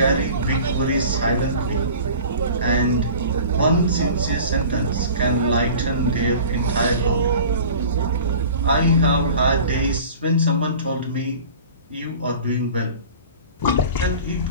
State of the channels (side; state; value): both; inverted; correlation -0.41